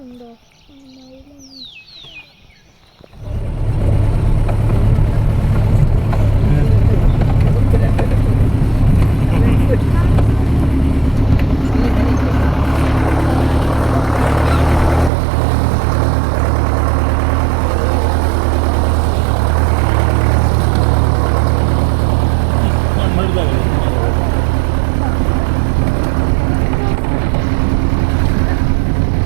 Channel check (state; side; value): drops out; left; at 15.1 s